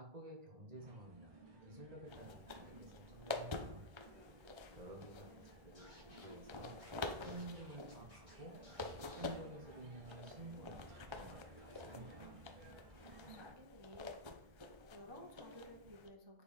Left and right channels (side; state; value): left; late; 1.3 ms